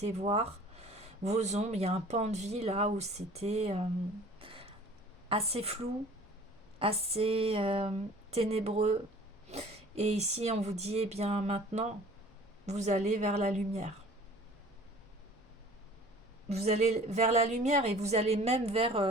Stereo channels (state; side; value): normal; both; correlation 0.48